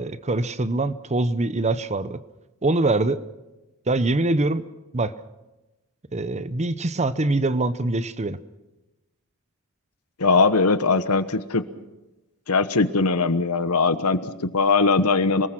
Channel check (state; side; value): normal; both; correlation 0.08